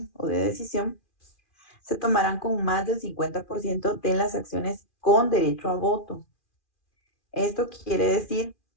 o de decisión, se tomarán con más del 50% de las acciones con derecho a voto. Esto quiere decir,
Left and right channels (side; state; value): right; late; 2.4 ms